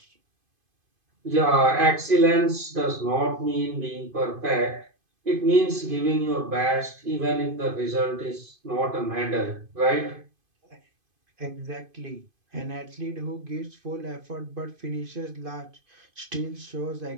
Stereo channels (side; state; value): left; late; 2.5 ms